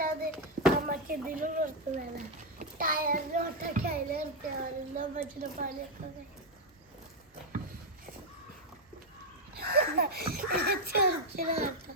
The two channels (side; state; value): both; normal; correlation 0.03